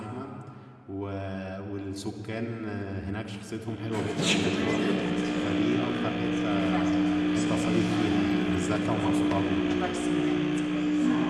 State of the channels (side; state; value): both; identical; correlation 1.00